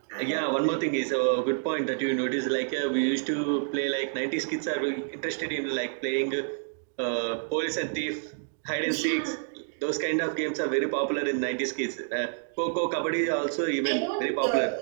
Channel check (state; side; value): silent; left; digital silence